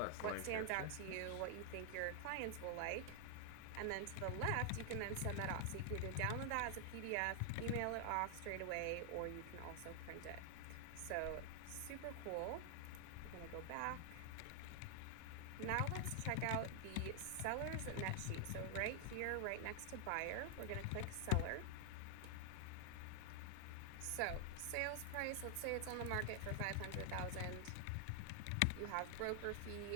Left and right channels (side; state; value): both; different; correlation 0.00